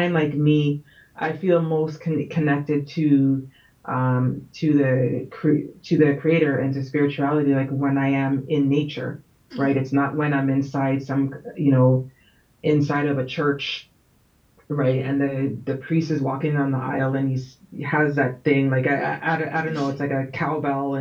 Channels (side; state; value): both; identical; correlation 1.00